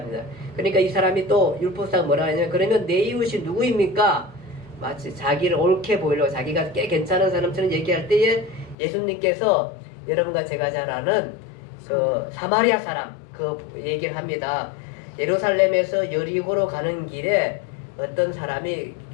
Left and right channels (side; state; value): right; drops out; at 8.8 s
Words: 그러니까 이 사람이 또 율법사가 뭐라 하냐면 그러면 내 이웃이 누구입니까? 마치 자기를 옳게 보이려고 자기가 꽤 괜찮은 사람처럼 얘기할 때에 예수님께서 여러분과 제가 잘 아는 그 사마리아 사람 그 얘기를 합니다. 예루살렘에서 여리고로 가는 길에 어떤 사람이